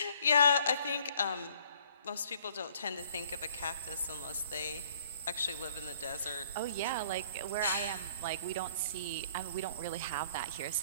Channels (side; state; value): both; inverted; correlation -0.58